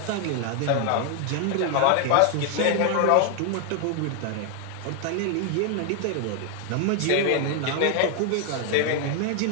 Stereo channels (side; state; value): both; different; correlation 0.00